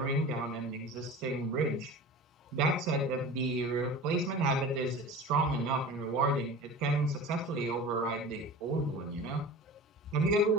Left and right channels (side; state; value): both; normal; correlation 0.36